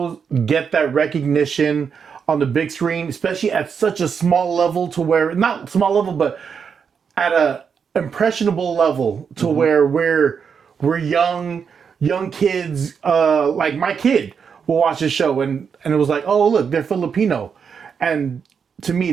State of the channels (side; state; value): left; quieter; 6.6 dB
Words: get that recognition on the big screen, especially at such a small level, to where not small level, but at a impressionable level, to where we're young kids, like my kid will watch this show and it was like, oh look, they're Filipino, and to me